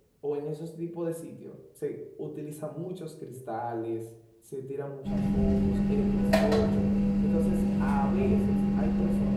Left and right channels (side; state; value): both; identical; correlation 1.00